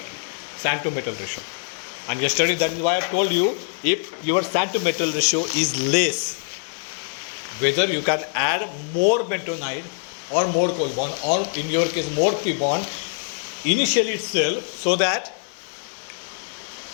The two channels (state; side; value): silent; right; digital silence